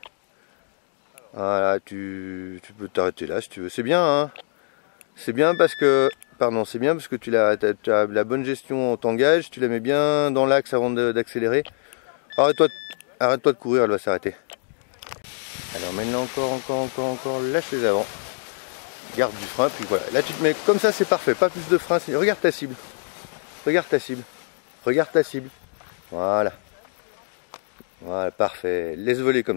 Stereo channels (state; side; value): silent; right; digital silence